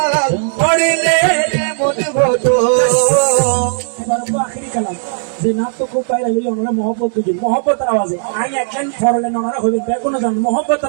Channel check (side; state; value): left; silent; digital silence